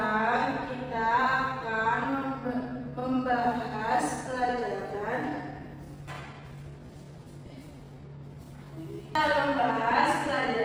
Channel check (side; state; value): both; identical; correlation 1.00